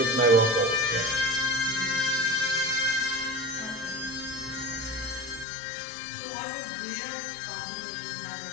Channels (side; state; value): right; drops out; at 5.5 s